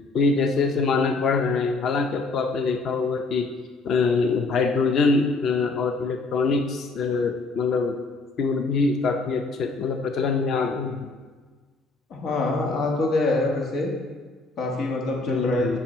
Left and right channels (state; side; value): quieter; right; 3.6 dB